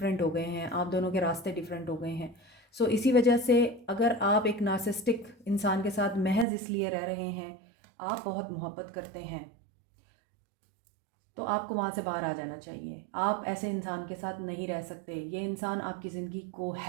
हो गए हैं, आप दोनों के रास्ते डिफरेंट हो गए हैं। सो इसी वजह से अगर आप एक नार्सिसिस्टिक इंसान के साथ महज इसलिए रह रहे हैं, आप बहुत मोहब्बत करते हैं, तो आपको वहाँ से बाहर आ जाना चाहिए। आप ऐसे इंसान के साथ नहीं रह सकते। ये इंसान आपकी ज़िंदगी को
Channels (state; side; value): drops out; left; at 6.5 s